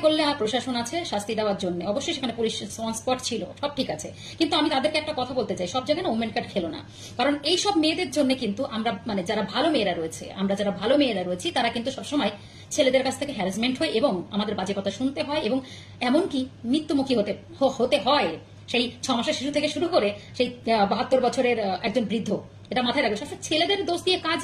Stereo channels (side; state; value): both; identical; correlation 1.00